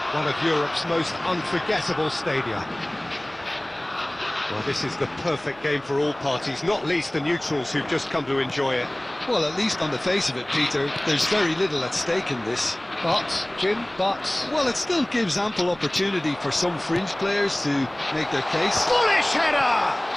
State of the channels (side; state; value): right; noise; hum, 25 dB below the sound